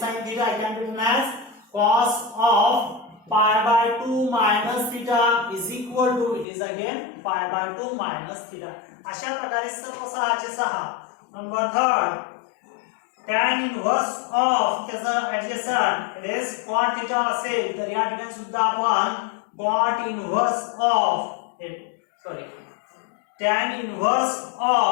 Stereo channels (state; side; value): drops out; right; at 6.5 s